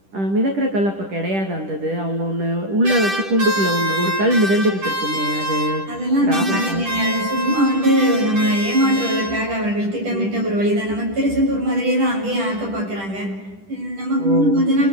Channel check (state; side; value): late; left; 10 ms